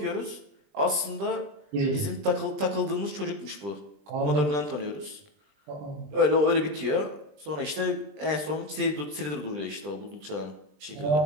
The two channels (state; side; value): late; left; 20 ms